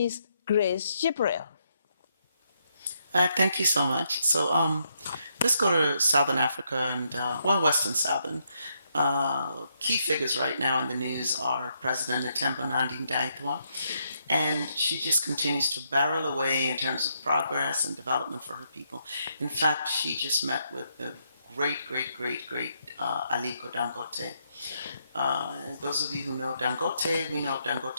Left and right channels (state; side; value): inverted; both; correlation -0.77